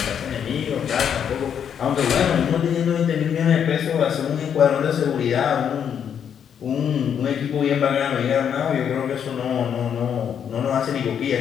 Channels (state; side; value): quieter; right; 8.3 dB